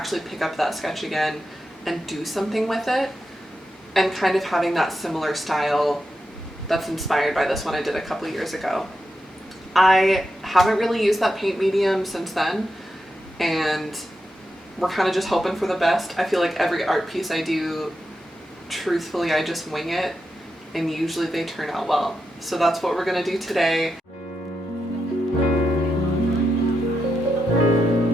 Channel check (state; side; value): normal; both; correlation 0.86